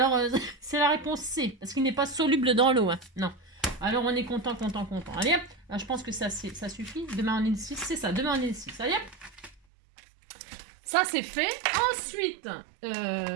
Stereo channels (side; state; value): left; drops out; at 9.6 s